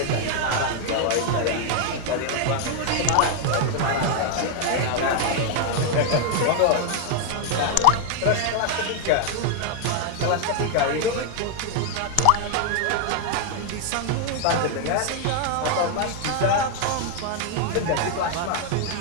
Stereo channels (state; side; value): different; both; correlation 0.00